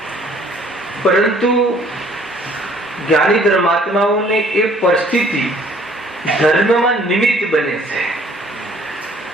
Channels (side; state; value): both; normal; correlation 0.57